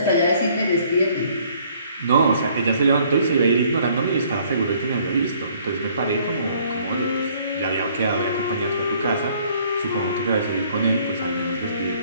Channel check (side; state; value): both; inverted; correlation -0.61